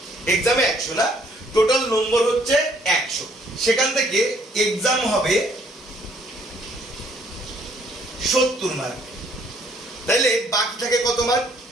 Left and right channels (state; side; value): normal; both; correlation 0.64